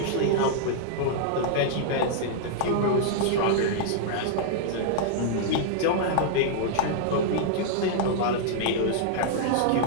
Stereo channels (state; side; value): different; both; correlation -0.01